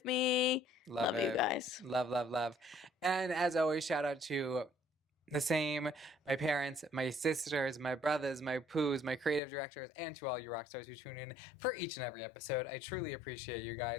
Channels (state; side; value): drops out; right; at 9.4 s